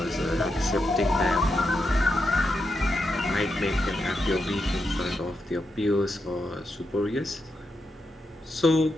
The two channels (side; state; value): both; normal; correlation 0.85